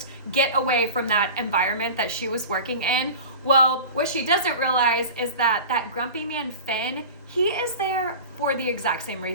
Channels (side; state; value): both; inverted; correlation -0.34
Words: get away from that environment that she was working in. Well, what she doesn't realize is that that grumpy man, Finn, he is there for the exact same